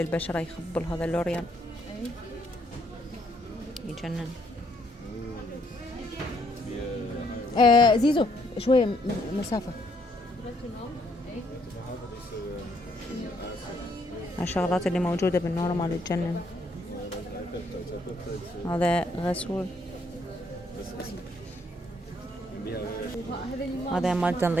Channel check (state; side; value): normal; both; correlation 0.69